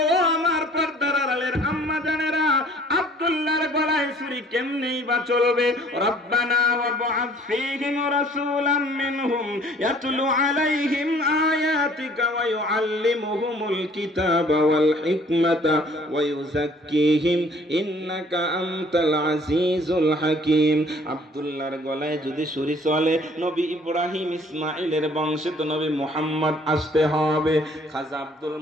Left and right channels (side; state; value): both; normal; correlation 0.56